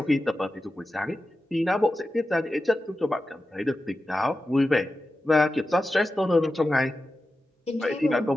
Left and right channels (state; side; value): normal; both; correlation 0.92